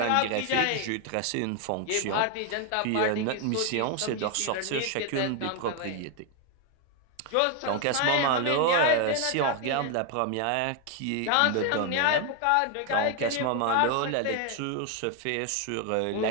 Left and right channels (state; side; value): different; both; correlation 0.01